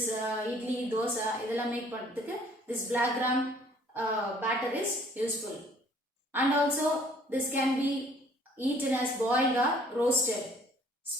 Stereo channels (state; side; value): normal; both; correlation 0.58